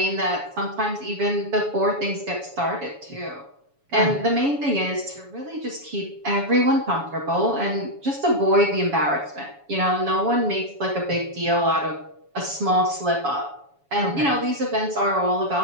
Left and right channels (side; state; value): left; late; 7.1 ms